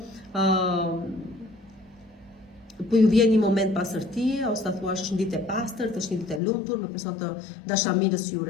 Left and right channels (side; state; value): right; drops out; at 6.4 s